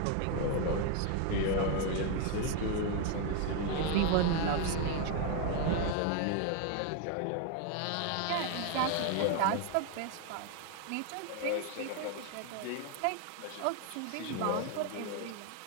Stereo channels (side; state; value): both; different; correlation 0.01